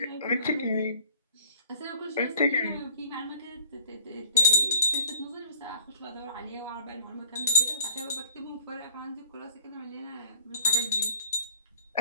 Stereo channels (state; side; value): inverted; both; correlation -0.51